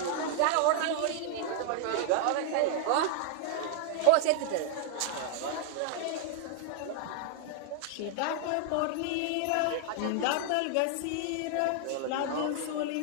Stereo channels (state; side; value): different; both; correlation 0.00